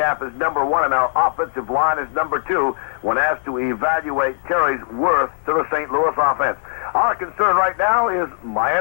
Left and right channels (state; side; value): silent; right; 59 dB below the other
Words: is number 1 and our offensive line is number 2 when asked to evaluate Terry's worth to the St. Louis offense. Our concern right now is